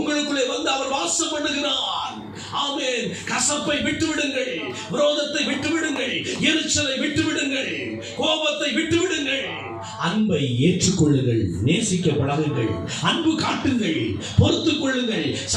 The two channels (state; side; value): identical; both; correlation 1.00